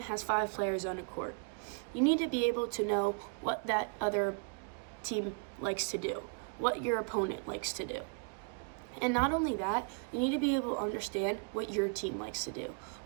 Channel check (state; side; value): quieter; left; 36.7 dB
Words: has 5 players on a court. You need to be able to know what that other team likes to do, what your opponent likes to do. And not only that, you need to be able to understand what your team likes to do,